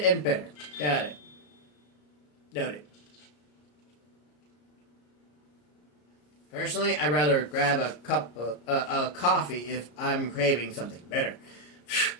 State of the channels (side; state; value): right; late; 34 ms